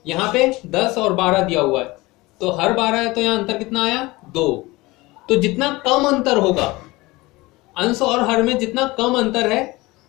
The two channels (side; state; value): right; quieter; 21.4 dB